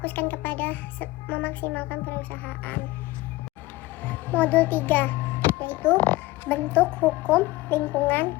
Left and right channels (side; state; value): right; quieter; 19.3 dB